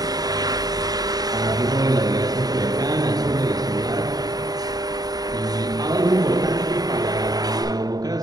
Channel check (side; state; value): left; late; 0.18 ms